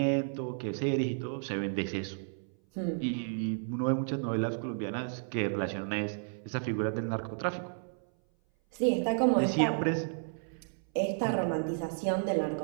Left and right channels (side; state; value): left; silent; 56 dB below the other